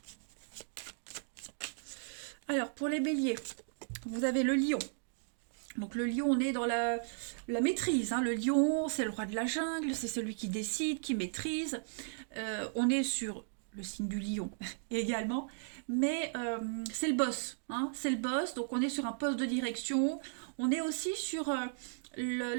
Alors, pour les béliers, vous avez le lion. Donc le lion, on est dans la maîtrise, hein. Le lion, c'est le roi de la jungle, c'est celui qui décide, qui maîtrise. On est sur le signe du lion également, mais c'est le boss, hein. C'est le boss, donc on est sur un poste de direction. On est aussi sur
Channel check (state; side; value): silent; left; digital silence